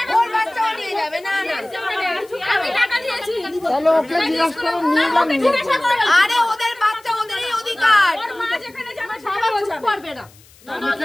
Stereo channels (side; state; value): left; noise; hiss, 27 dB below the sound